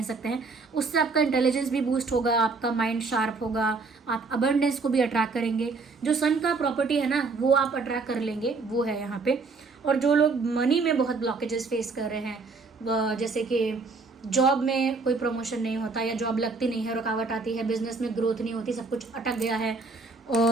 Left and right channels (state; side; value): quieter; left; 4.1 dB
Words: सकते हैं। उससे आपका इंटेलिजेंस भी बूस्ट होगा, आपका माइंड शार्प होगा, आप अबंडेंस को भी अट्रैक्ट करेंगे। जो सन का प्रॉपर्टी है ना वो आप अट्रैक्ट कर लेंगे, वो है यहाँ पे। और जो लोग मनी में बहुत ब्लॉकेजेस फेस कर रहे हैं, जैसे कि जॉब में कोई प्रमोशन नहीं होता या जॉब लगती नहीं है, रुकावट आती है, बिजनेस में ग्रोथ नहीं होती, सब कुछ अटक गया है